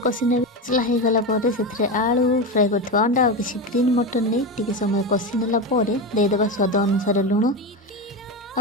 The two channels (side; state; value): both; normal; correlation 0.17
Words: कषि ने। मसला हो गला पर से आलू फ्राए करथिबा अंडा और किछि ग्रीन मटन नहीं टिके समय कषि नेला पर दे देबा स्वाद अनुसार लुण